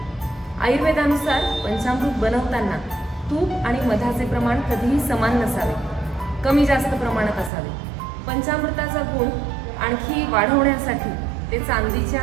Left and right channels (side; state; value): left; drops out; at 7.5 s